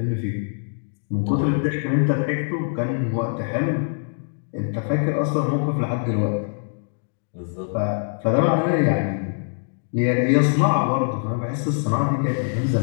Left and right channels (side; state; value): right; silent; digital silence